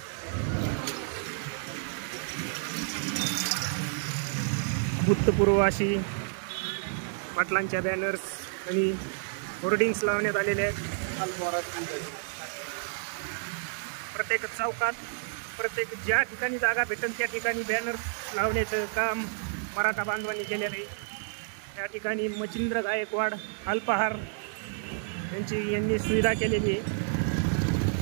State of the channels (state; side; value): silent; left; digital silence